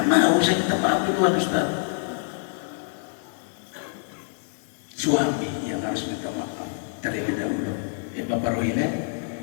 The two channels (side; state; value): right; silent; 61 dB below the other